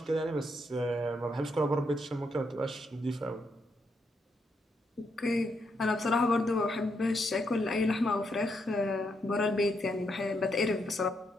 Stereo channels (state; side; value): normal; both; correlation 0.79